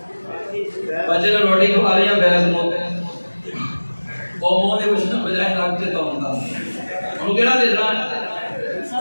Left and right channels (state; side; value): inverted; both; correlation -1.00